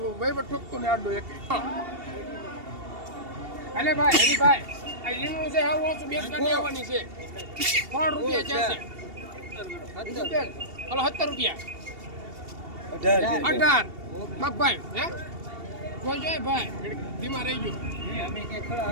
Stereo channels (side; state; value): left; late; 2.8 ms